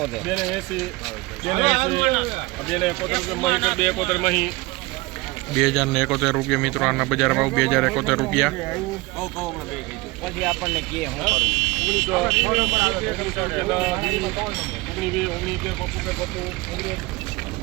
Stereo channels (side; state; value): left; quieter; 22.9 dB